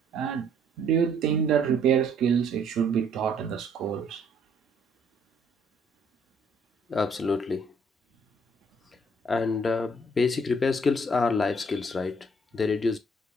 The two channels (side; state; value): both; normal; correlation 0.63